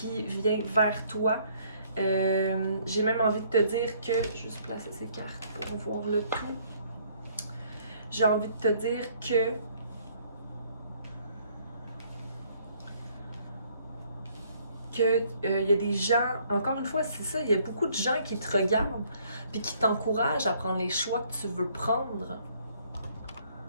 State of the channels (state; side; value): inverted; both; correlation -0.63